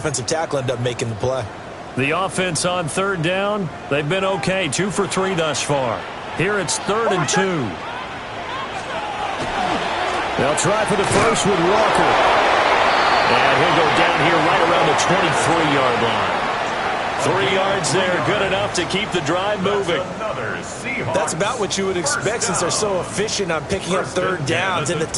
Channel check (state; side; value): identical; both; correlation 1.00